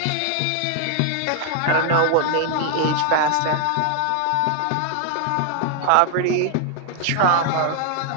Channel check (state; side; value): different; both; correlation 0.00